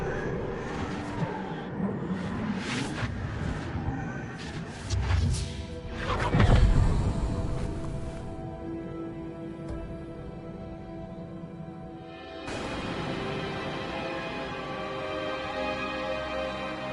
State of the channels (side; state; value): both; identical; correlation 1.00